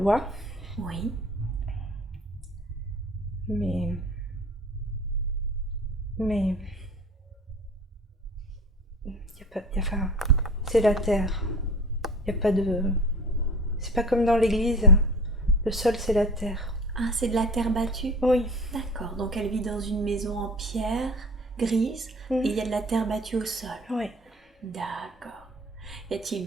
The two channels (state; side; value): normal; both; correlation 0.41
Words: oui. mais enfin, c'est la terre. Il y a pas de. C'est pas comme dans l'église. Le sol, c'est la terre. Ah, c'est de la terre battue? Oui. D'accord, donc elle vit dans une maison en pierre grise et il y a de la terre battue au sol. Oui. D'accord. Y a-t-il